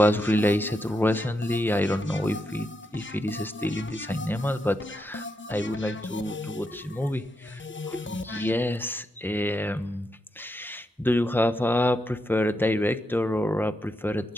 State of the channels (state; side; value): normal; both; correlation 0.83